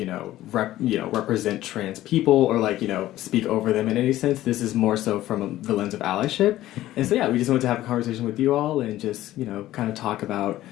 represent trans people or speak over them in any sense. This is more so from the lens of allyship. And so, we just wanted to have a conversation with you all and just, kind of talk about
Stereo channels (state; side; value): quieter; right; 14.7 dB